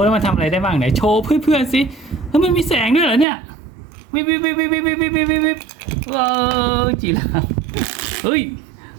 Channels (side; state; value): left; drops out; at 3.2 s